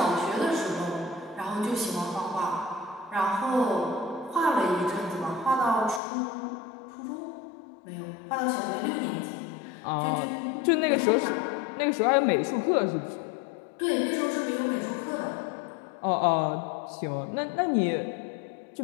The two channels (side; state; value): right; drops out; at 6.0 s